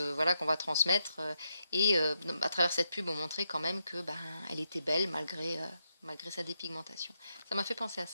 voilà, qu'on va transmettre. Et à travers cette pub, on montrait quand même que, bah, elle était belle malgré sa dépigmentation. Ça m'a fait penser à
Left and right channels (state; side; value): inverted; both; correlation -0.82